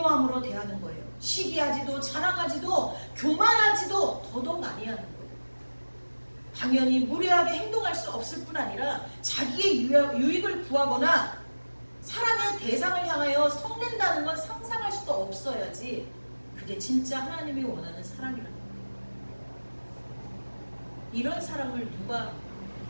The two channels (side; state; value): both; inverted; correlation -1.00